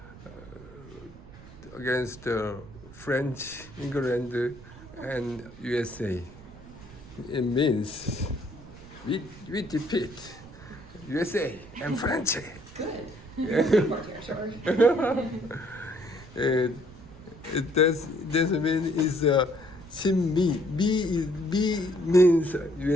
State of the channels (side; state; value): right; noise; rumble, 18 dB below the sound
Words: French, England, and USA. It means we defeat USA and French. Good. Yeah. This means is Shinmi. B means